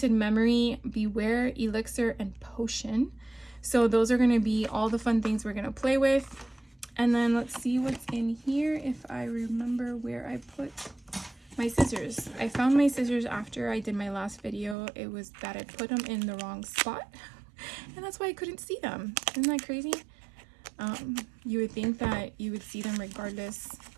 Memory, Beware, Elixir, and Potion. So those are going to be all the fun things we're going to play with. And then let's see what's in here, if I remember where I put my scissors. I found my scissors after I did my last video. It was that I put them in the wrong spot, and that's why I couldn't see them. Isn't that crazy? You would think that you would see them regardless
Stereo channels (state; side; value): drops out; left; at 14.8 s